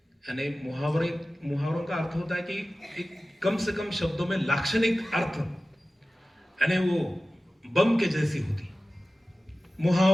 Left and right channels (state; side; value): normal; both; correlation 0.96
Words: यानी मुहावरों का अर्थ होता है कि एक कम से कम शब्दों में लाक्षणिक अर्थ, यानी वो बम के जैसी होती।